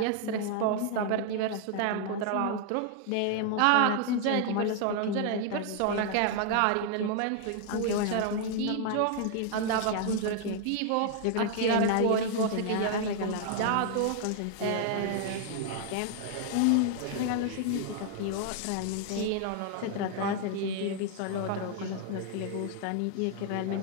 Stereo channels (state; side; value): different; both; correlation 0.00